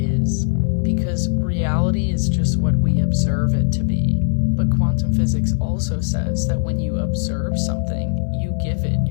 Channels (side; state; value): right; silent; 61 dB below the other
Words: because reality is just what we observe it to be. But quantum physics also says that when you observe something, you give it